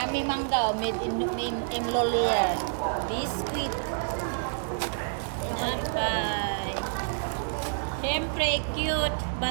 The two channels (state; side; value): silent; left; 59 dB below the other